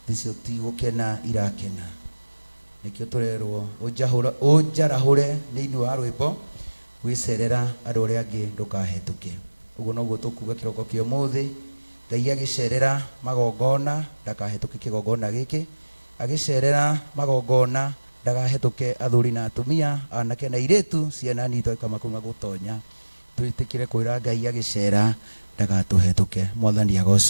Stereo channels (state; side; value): inverted; both; correlation -1.00